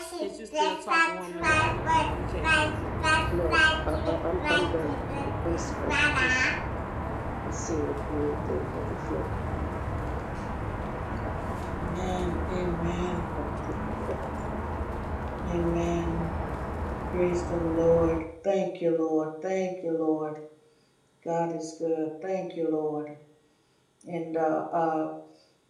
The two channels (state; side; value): identical; both; correlation 1.00